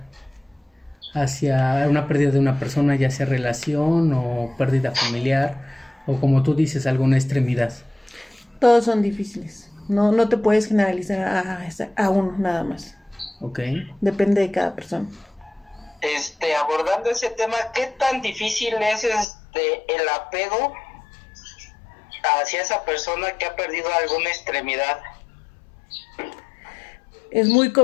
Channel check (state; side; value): drops out; right; at 19.2 s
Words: hacia una pérdida de una persona, ya sea relación o pérdida familiar o, como tú dices, alguna extremidad? Todos son difíciles. No te puedes generalizar a uno nada más. Ok. Depende de cada persona. Abordando ese tema, ¿qué tan difícil es el apego hacia esa persona que ha perdido alguna extremidad? Es muy